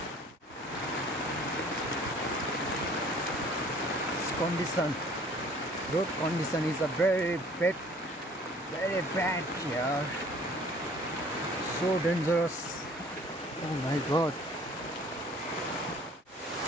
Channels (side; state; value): both; normal; correlation 0.53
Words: This condition, road condition is a very bad here. So dangerous. Oh my god.